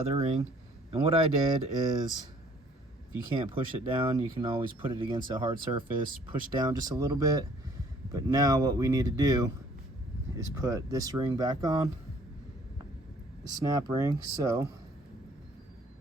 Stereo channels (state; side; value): normal; both; correlation 0.58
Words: ring. And what I did is, if you can't push it down, you can always put it against a hard surface, push down just a little bit. But now what we need to do is put this ring back on, the snap ring. So